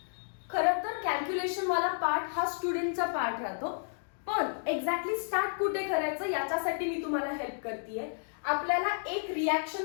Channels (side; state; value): right; silent; digital silence